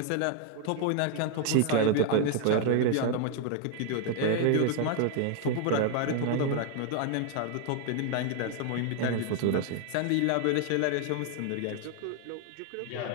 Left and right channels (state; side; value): different; both; correlation 0.00